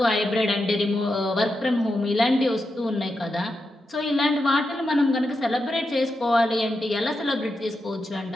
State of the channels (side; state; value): both; normal; correlation 0.87